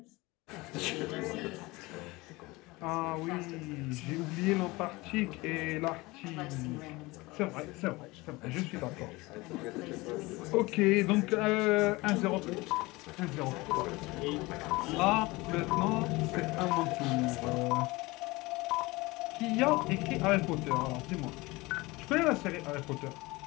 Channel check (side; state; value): right; quieter; 22.2 dB